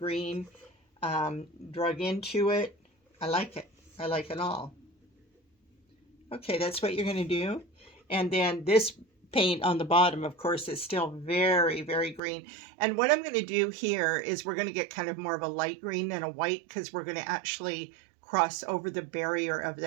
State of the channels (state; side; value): drops out; left; at 12.2 s